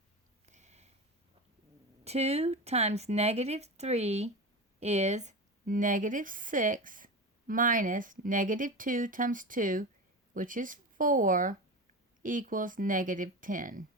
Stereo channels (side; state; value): both; normal; correlation 0.25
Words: 2 times negative 3 is negative 6 minus negative 2 times 2, which is 4, equals negative 10.